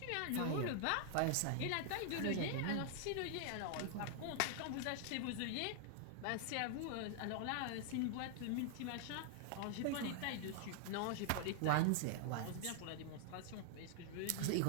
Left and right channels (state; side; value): different; both; correlation 0.00